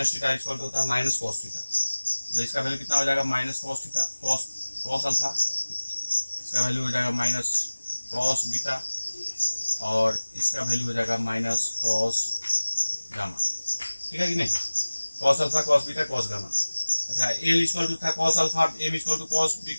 theta equal होता है माइनस कॉस थीटा, तो इसका वैल्यू कितना हो जाएगा minus cos theta cos alpha, इसका वैल्यू हो जाएगा माइनस कॉस बीटा, और इसका वैल्यू हो जाएगा माइनस कॉस गामा। ठीक है कि नहीं, cos alpha cos beta cos gamma. अच्छा एल इक्वल टू था cos alpha, M equal to cos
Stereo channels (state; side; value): inverted; both; correlation -1.00